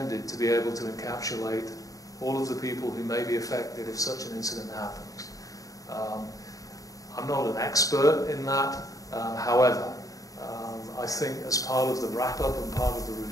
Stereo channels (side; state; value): right; late; 0.17 ms